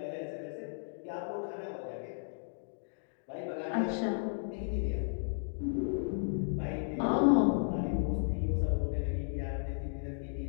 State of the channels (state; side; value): silent; right; digital silence